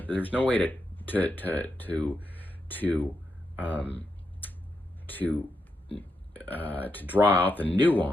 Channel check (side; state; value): both; normal; correlation 0.84